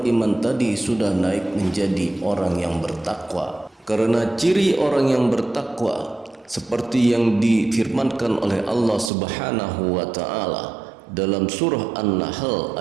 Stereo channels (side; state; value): left; drops out; at 9.1 s